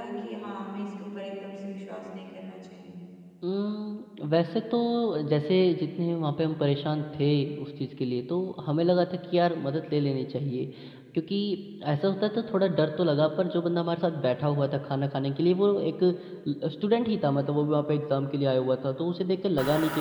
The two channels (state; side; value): identical; both; correlation 1.00